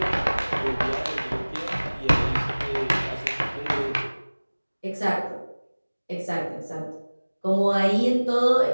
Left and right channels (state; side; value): inverted; both; correlation -1.00